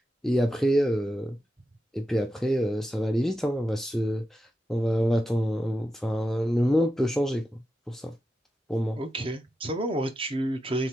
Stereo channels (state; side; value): normal; both; correlation 0.89